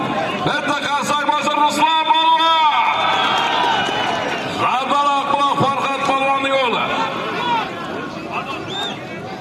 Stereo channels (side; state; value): both; identical; correlation 1.00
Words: Bitta qarsak bo'lsin Ruslan Balvan. Zarbaroq bilan Farhod Balvonning o'g'li.